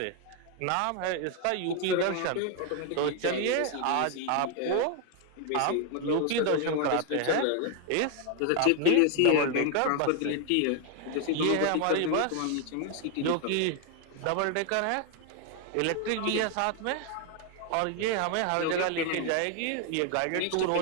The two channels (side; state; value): both; different; correlation 0.01